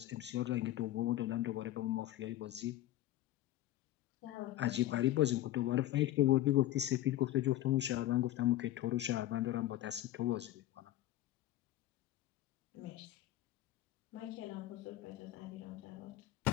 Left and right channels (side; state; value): right; quieter; 14.3 dB